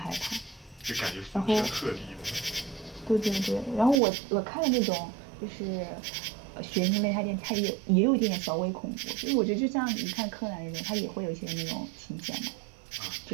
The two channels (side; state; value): left; drops out; at 4.0 s